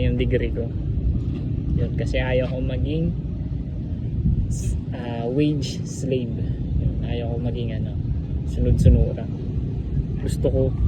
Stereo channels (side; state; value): both; identical; correlation 1.00